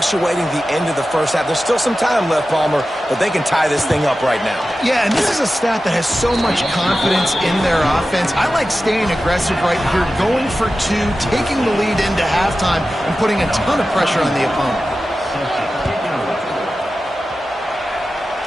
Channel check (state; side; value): normal; both; correlation 0.94